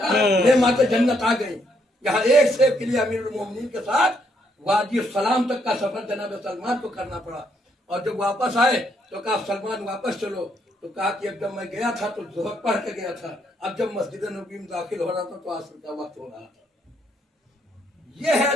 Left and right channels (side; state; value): both; normal; correlation 0.73